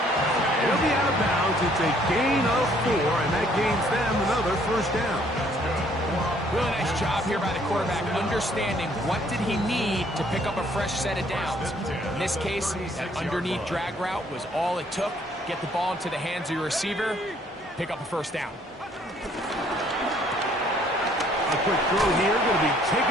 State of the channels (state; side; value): normal; both; correlation 0.63